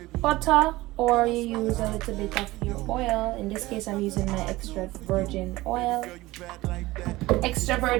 butter or you use a little bit of your oil. In this case I'm using my extra virgin olive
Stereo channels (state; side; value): quieter; left; 18.9 dB